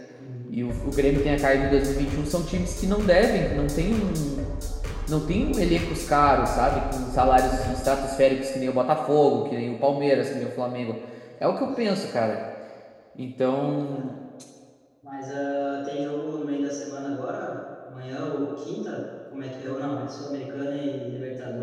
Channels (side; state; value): both; identical; correlation 1.00